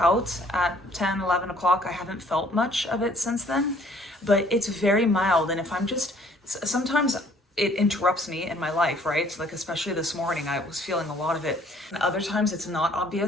at 10, 11 o'clock, I haven't felt much of it since then, but it's very mild. And if I'm just, sometimes it interrupts me in my life, right? Like, especially this morning, I was feeling a lot of it. And other times it's not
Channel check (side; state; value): both; normal; correlation 0.59